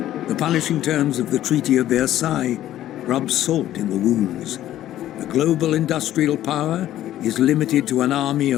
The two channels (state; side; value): quieter; right; 13.0 dB